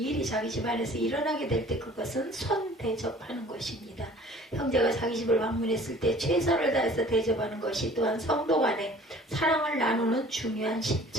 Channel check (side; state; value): both; normal; correlation 0.49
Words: 자기 집안에서 일어나게 될 때 그것은 손 대접하는 것입니다. 형제가 자기 집을 방문했을 때 최선을 다해서 대접하는 것이 또한 성도 간에 사랑을 나누는 중요한